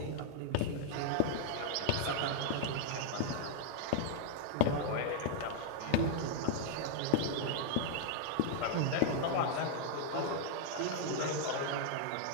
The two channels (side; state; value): both; different; correlation 0.00